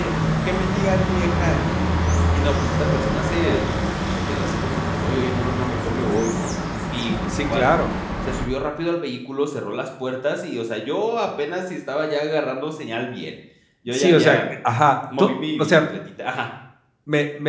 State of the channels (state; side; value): identical; both; correlation 1.00